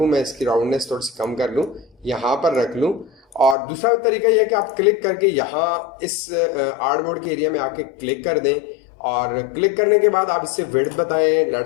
मैं इसकी राउंडनेस थोड़ी सी कम कर लूँ, यहाँ पर रख लूँ, और दूसरा तरीका यह है कि आप क्लिक करके यहाँ इस आर्टबोर्ड के एरिया में आके क्लिक कर दें और क्लिक करने के बाद आप इससे विड्थ बताएं।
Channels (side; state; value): right; drops out; at 3.6 s